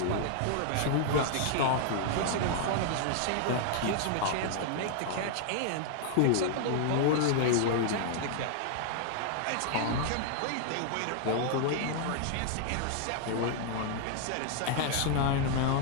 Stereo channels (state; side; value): different; both; correlation 0.00